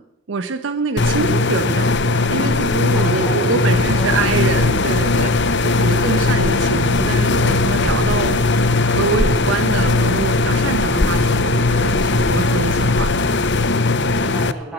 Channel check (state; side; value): normal; both; correlation 0.34